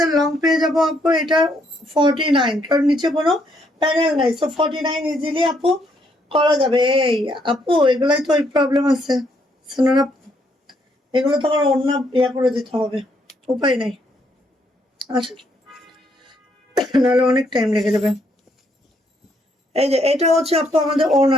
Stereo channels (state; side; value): normal; both; correlation 0.72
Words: লং পেয়ে যাবো আপু এটা 49, কারণ নিচে কোনো প্যানেল নাই। সো 49 ইজিলি আপু করা যাবে। এই আপু এগুলাই তো ওই প্রবলেম আছে সোনার আপু, এগুলো তো আমার অন্য ইয়া করে দিতে হবে, উপায় নাই আসলে, নাহলে অনেক টাইম লেগে যাবে। এই যে এটা হচ্ছে আপু আমাদের